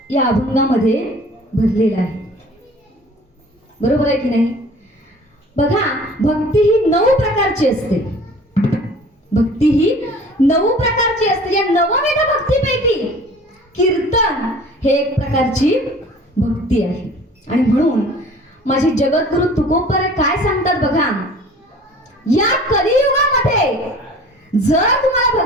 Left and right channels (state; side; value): normal; both; correlation 0.47